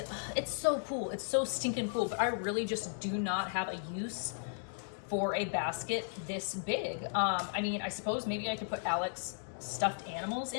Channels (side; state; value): right; silent; digital silence